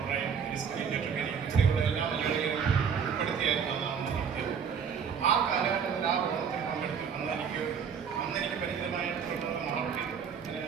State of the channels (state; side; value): quieter; left; 7.0 dB